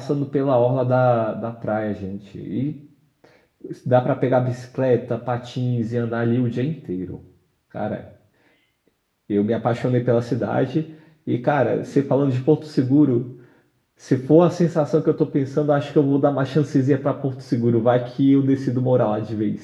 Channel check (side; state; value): both; identical; correlation 1.00